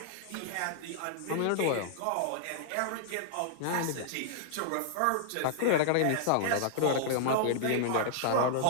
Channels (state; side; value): different; both; correlation -0.01